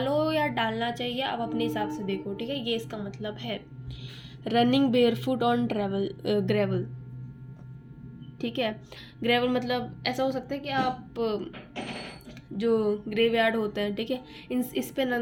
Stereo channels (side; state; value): both; identical; correlation 1.00